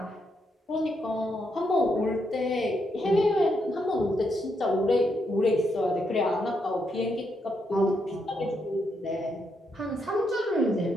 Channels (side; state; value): both; normal; correlation 0.79